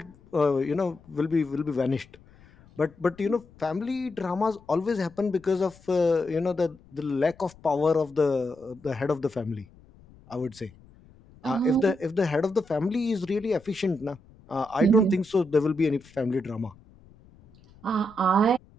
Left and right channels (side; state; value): left; noise; rumble, 26 dB below the sound